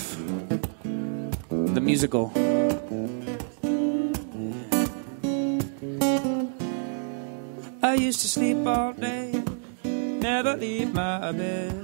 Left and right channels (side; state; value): left; silent; digital silence